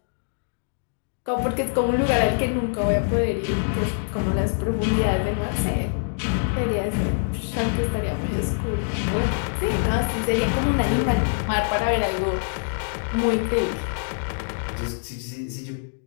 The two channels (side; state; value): right; silent; digital silence